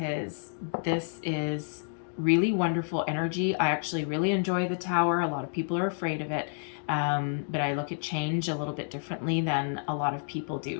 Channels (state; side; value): silent; right; digital silence